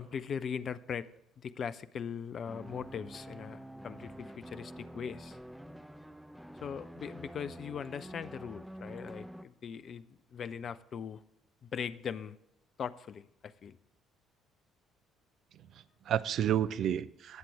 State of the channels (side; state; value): both; normal; correlation 0.61